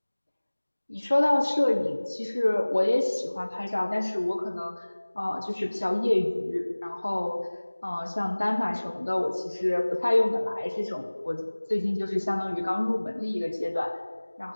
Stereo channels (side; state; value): both; inverted; correlation -1.00